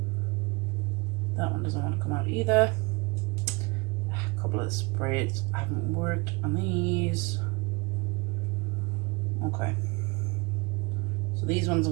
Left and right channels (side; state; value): left; quieter; 26.5 dB